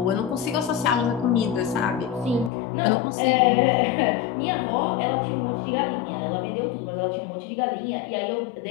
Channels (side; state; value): right; drops out; at 2.5 s